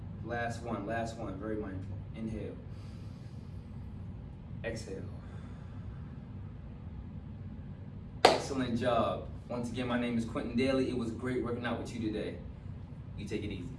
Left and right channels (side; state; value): both; identical; correlation 1.00